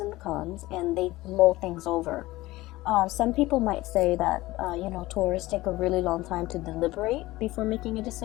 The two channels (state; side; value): quieter; right; 18.6 dB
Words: and the cons, and they mull things over. Some people might say that Taurus take a really long time to deliberate before making a